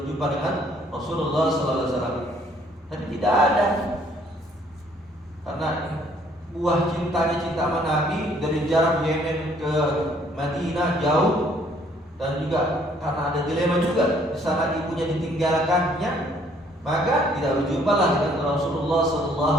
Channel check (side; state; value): both; normal; correlation 0.63